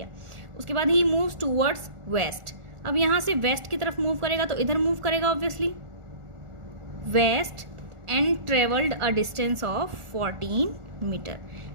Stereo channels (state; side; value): late; left; 1.4 ms